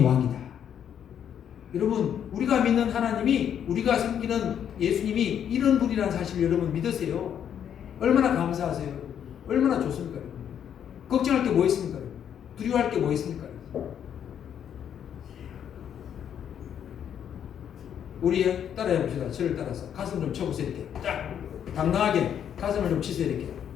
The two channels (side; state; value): right; quieter; 9.0 dB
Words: 왕이다. 여러분 우리가 믿는 하나님이 우리가 섬기는 예수님이 이런 분이라는 사실을 여러분 믿으세요. 얼마나 감사하세요. 얼마나 좋습니까? 걱정할 게 뭐 있습니까? 두려워할 게 뭐 있습니까? 우리 따라해 봅시다. 저를 따라서 가슴 좀 쳐보세요. 이렇게 딱 당당하게 가슴을 좀 치세요. 이렇게